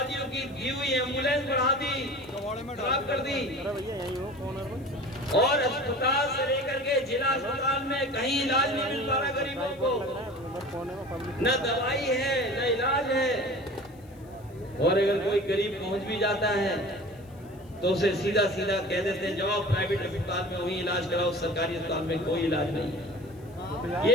की दी हुई एम्बुलेंस बढ़ा दी, खराब कर दी, और अस्पताल से लेकर के जिला अस्पताल में कहीं इलाज नहीं मिल पा रहा गरीबों को, न दवाई है न इलाज है। और अगर कोई गरीब पहुंच भी जाता है तो उसे सीधा सीधा कह देते हैं जाओ प्राइवेट अस्पताल में वहीं इलाज कराओ, सरकारी अस्पताल में कोई इलाज नहीं है। ये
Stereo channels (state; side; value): noise; left; hiss, 30 dB below the sound